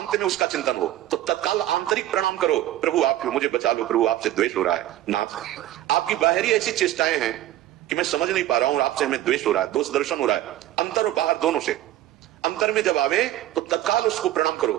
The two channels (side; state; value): left; quieter; 14.0 dB